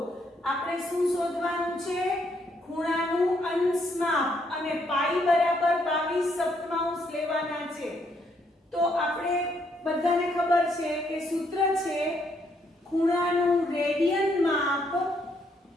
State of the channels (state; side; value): normal; both; correlation 0.73